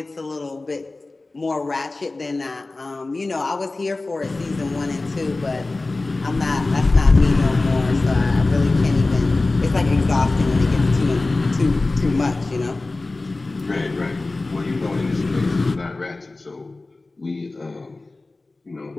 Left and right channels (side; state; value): right; quieter; 3.2 dB